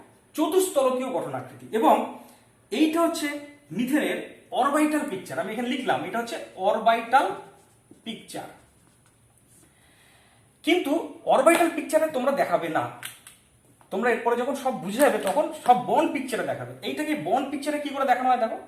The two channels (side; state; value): both; identical; correlation 1.00